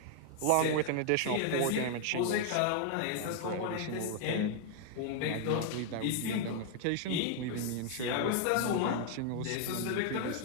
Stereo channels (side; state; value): both; different; correlation 0.00